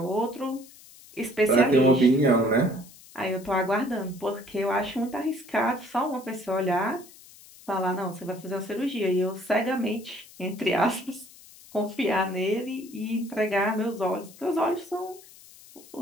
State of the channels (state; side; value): noise; left; hiss, 22 dB below the sound